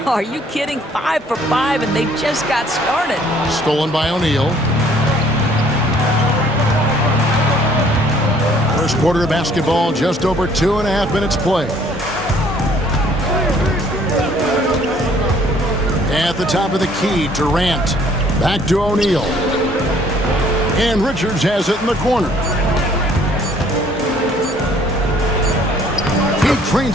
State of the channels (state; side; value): normal; both; correlation 0.60